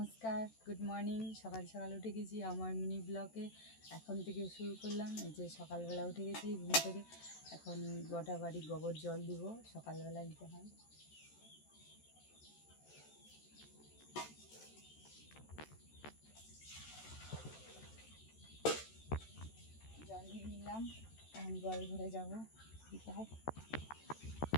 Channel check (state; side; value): late; right; 13 ms